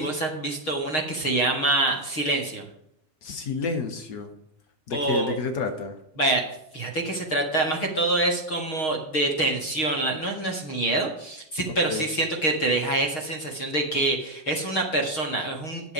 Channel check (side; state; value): right; late; 6.4 ms